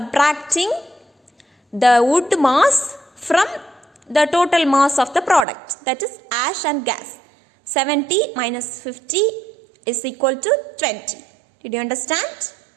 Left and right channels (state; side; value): drops out; left; at 5.5 s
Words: the wood mass from the total mass of the product, that is ash and gas. 70 minus 50 is equal to 20. Did you understand?